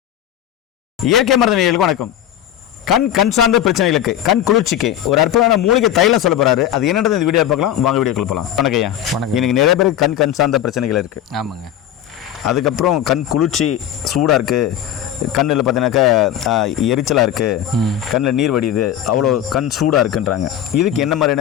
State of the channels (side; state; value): right; quieter; 11.1 dB